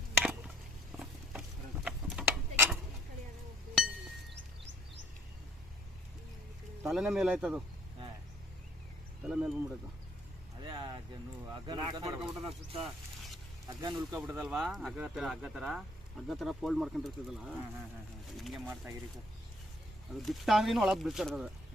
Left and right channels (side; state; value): both; normal; correlation 0.61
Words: ತಲೆನೇ ಮೇಲೆ ಆಯ್ತದು, ತಲೆ ಮೇಲೆ ಬಂದ್ಬಿಡೈತು. ಅದೇ ಹಗ್ಗ ಉಳ್ಕೊಬಿಟ್ಟದಲ್ವಾ, ಹಗ್ಗ ಥರ ಫೋಲ್ಡ್ ಮಾಡ್ಕೊಂಡಿರ್ತದಲ್ಲ, ಹಿಂಗೆ ಮಾಡ್ತಾಗಿರಿ ಸರ್. ಅದು ಬಿಟ್ಟ ಅಂದ್ರೂ ಒಳಗೆ ಬಿಡ್ತಿರ್ತದೆ,